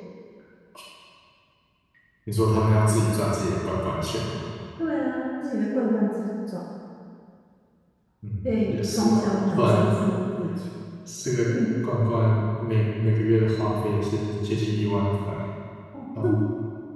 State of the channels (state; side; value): identical; both; correlation 1.00